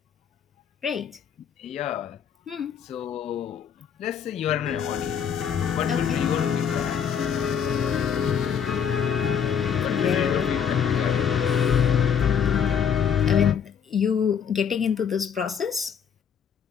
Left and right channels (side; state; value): right; quieter; 7.6 dB